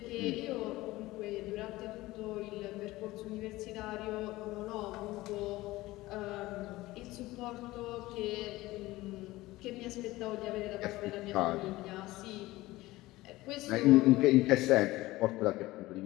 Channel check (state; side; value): quieter; right; 18.5 dB